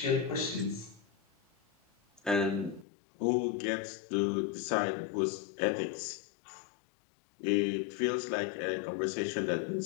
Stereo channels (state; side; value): drops out; right; at 2.9 s